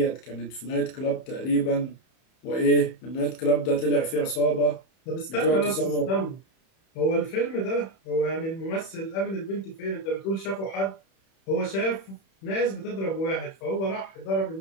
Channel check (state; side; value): late; right; 31 ms